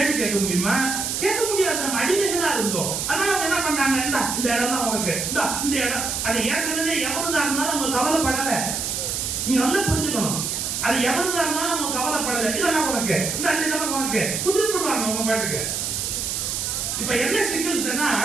கேட்க முடியுமா? கேட்க முடியாது. நம்ம அடிமைகளா இருந்தோம். அதனால அவங்க என்ன பண்ணாங்க, இந்த இடம் தான் உனக்கு, இந்த இடம். அது ஏற்கனவே எவருதா இருந்தாலும் அவங்க கவலைப்படல. நீங்க நல்லா புரிஞ்சுக்கணும். அது எவருதா இருந்தாலும் அவங்க கவலைப்படல. இதெல்லாம் உனக்கு, இதெல்லாம் உனக்கு குடுத்துடுவாங்க அவங்க பாட்டுக்கு. இப்ப என்ன சிக்கல்னா,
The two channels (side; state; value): right; noise; hiss, 2 dB below the sound